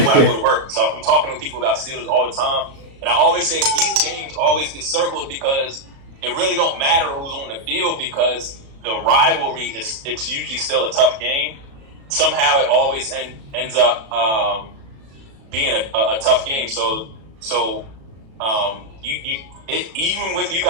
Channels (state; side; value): late; left; 36 ms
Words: I go to work, so I'm talking to people about Steelers all the time, and I always say these games always get circled because it really don't matter who's on the field because the rivalry it's usually still a tough game. Somehow it always ends up being a tough game. So even with you